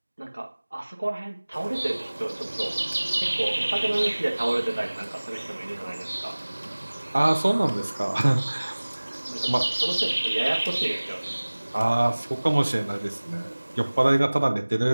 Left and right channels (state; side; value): inverted; both; correlation -1.00